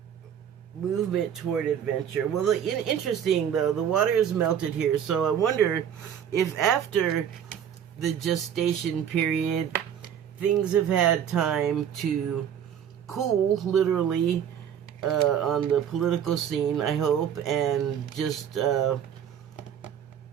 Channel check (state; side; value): quieter; left; 8.9 dB